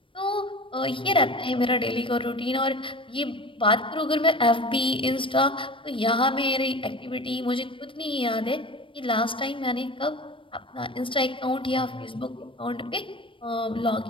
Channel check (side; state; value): right; late; 0.25 ms